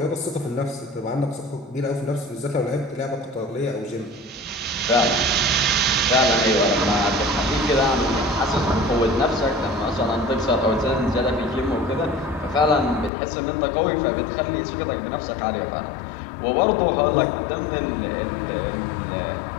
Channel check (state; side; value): drops out; right; at 13.1 s